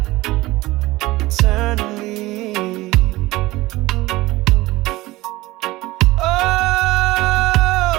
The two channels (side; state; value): left; quieter; 19.2 dB